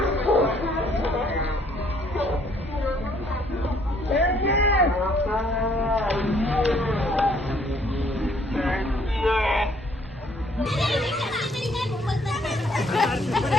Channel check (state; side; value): normal; both; correlation 0.64